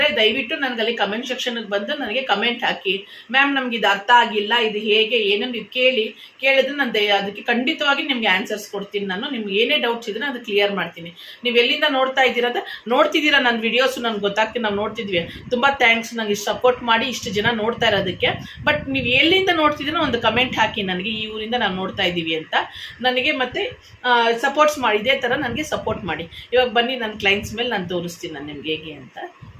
ದಯವಿಟ್ಟು ನನಗಲ್ಲಿ ಕಮೆಂಟ್ ಸೆಕ್ಷನ್ಗೆ ಬಂದು ನನಗೆ ಕಮೆಂಟ್ ಹಾಕಿ. ಮ್ಯಾಮ್, ನಮ್ಗೆ ಇದು ಅರ್ಥ ಆಗಿಲ್ಲ, ಇದು ಹೇಗೆ ಏನು ನೀವು ಕೇಳಿದ್ರೆ ನಾನು ಅದಕ್ಕೆ ಖಂಡಿತವಾಗಿ ನಿಮಗೆ ಆನ್ಸರ್ಸ್ ಕೊಡ್ತೀನಿ. ನಾನು ನಿಮ್ಗೆ ಏನೇ ಡೌಟ್ಸ್ ಇದ್ರೆ ಅದು ಕ್ಲಿಯರ್ ಮಾಡ್ತೀನಿ. ನೀವು ಎಲ್ಲಿಂದ ನೋಡ್ತಿದ್ದೀರಾ ನನ್ನ ವಿಡಿಯೋಸು ನನಗೆ ಗೊತ್ತಾಗ್ತೀನಿ. ನಾವು ನೋಡ್ತಿದ್ವಿ. ತುಂಬ ಥ್ಯಾಂಕ್ಸ್ ನನಗೆ ಸಪೋರ್ಟ್ ಮಾಡಿ ಇಷ್ಟು ಜನ ನೋಡ್ತಾ ಇರೋದಕ್ಕೆ. ಬಟ್ ನೀವು ಎಲ್ಲಿಂದ ನೋಡ್ತಿದ್ದೀನೋ ಒಂದು ಕಮೆಂಟ್ ಹಾಕಿ ನನಗೆ, ಈ ಊರಿಂದ ನಾವು ನೋಡ್ತಾ ಇದ್ದೀವಿ ಅಂತ ನನಗೆ. ಮತ್ತೆ ಸಪೋರ್ಟ್ಸ್ ಮಾಡಿ, ಇದೇ ಥರ ನನಗೆ ಸಪೋರ್ಟ್ ಮಾಡಿ. ಇವಾಗ ಬನ್ನಿ ನನ್ನ ಕ್ಲೈಂಟ್ಸ್ ಮೇಲೆ ನಾನು ತೋರಿಸ್ತೀನಿ ನಾನು ನಿಮ್ಗೆ ಹೇಗೆ ಅಂತ.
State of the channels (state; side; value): identical; both; correlation 1.00